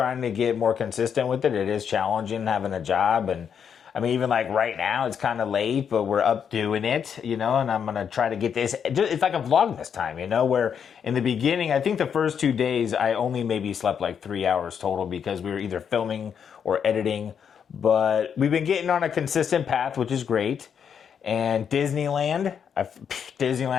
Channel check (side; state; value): right; quieter; 7.5 dB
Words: to get more consistent with it. It is challenging having a job. And I mean, even like right now, it's kind of late, but we're up doing it, and I'm going to try to get this. It's like a vlog this time, where in the beginning, I think the first 2 days, I only maybe slept like 3 hours total because we were either filming or editing. But we've been getting on a consistent path, which is great. And Disneyland